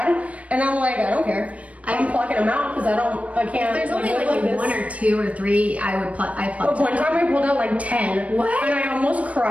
and I'm like, I don't care. I'm plucking them out because I can't. There's only like 1 or 2 or 3 I pluck. But one time I pulled out like 10. What? And I almost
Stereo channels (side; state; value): left; late; 0.066 ms